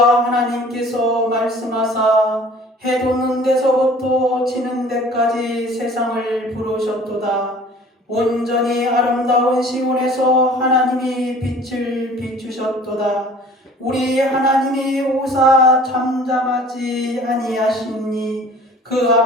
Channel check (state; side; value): normal; both; correlation 0.48